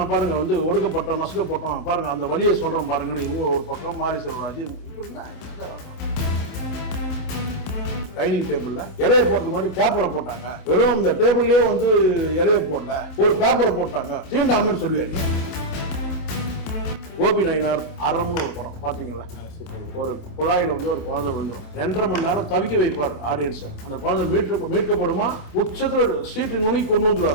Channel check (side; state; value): right; late; 27 ms